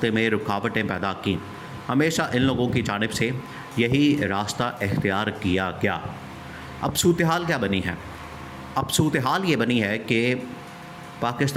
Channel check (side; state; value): both; identical; correlation 1.00